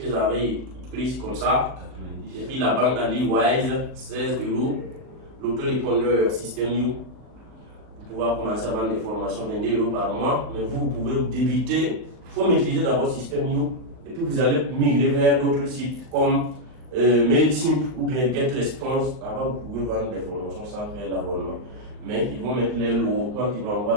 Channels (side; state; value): left; late; 39 ms